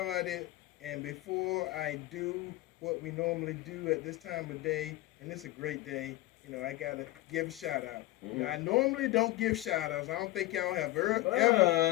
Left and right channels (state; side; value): quieter; right; 17.7 dB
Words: and before I do what we normally do at this time of day, and it's a great day, I gotta give a shout out. I normally don't give shout outs. I don't think y'all have